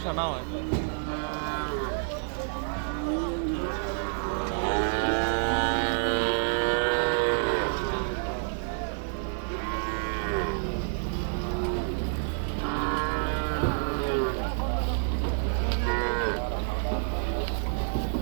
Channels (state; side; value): silent; left; 59 dB below the other